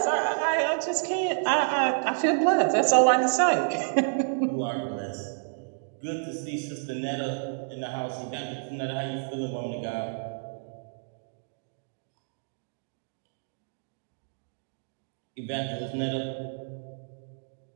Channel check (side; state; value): left; silent; digital silence